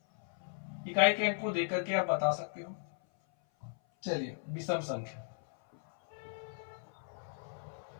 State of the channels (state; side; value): silent; right; 54 dB below the other